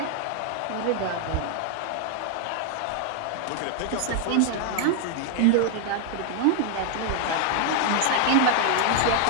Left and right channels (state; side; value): different; both; correlation 0.00